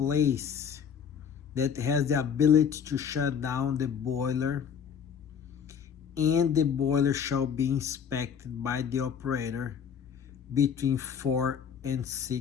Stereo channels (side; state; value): right; quieter; 7.5 dB